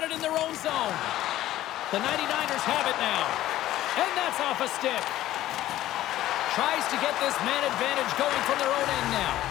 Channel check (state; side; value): quieter; right; 14.2 dB